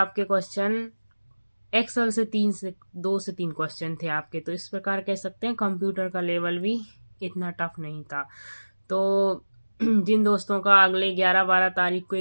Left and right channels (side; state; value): both; inverted; correlation -1.00